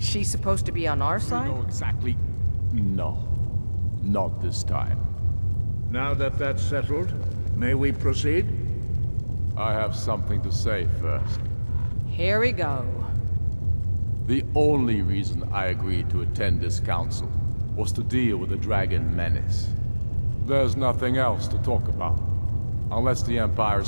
supposed to be on our side? We know exactly... No. Not this time. Now that that's settled, may we proceed? I have something to say first. Here we go. The only reason I agreed to attend this council was to deal with the dragon menace. There's nothing else to talk about. Unless the Empire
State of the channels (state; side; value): inverted; both; correlation -1.00